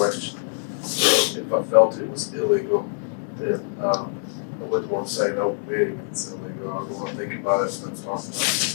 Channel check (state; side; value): silent; right; 62 dB below the other